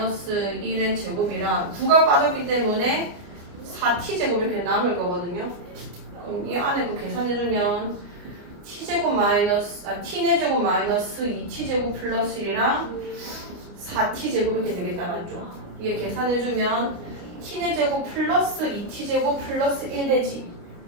1의 제곱이랑 9가 빠졌기 때문에 4t제곱 이렇게 남을 거거든요. 그럼 이 안에 그 계산해주면 t제곱 마이너스 t네 제곱 마이너스 2t제곱 플러스 1이랑 4t제곱 이렇게 되겠다 맞죠? 이게 계산해주면 t네 제곱 플러스 2t제곱 플러스 1 되지.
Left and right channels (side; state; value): left; late; 28 ms